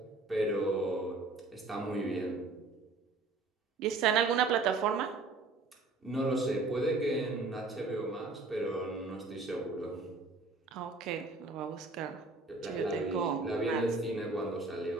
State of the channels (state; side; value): quieter; left; 3.6 dB